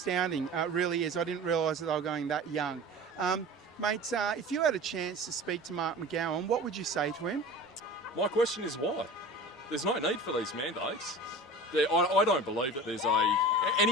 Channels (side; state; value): both; normal; correlation 0.36